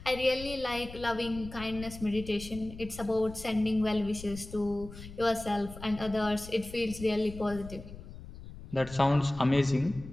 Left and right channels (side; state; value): left; noise; rumble, 14 dB below the sound